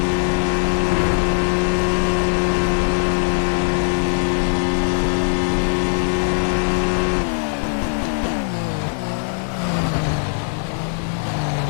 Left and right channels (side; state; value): right; silent; 66 dB below the other